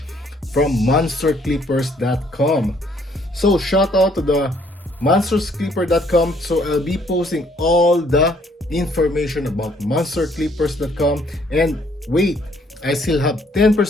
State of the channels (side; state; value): both; normal; correlation 0.64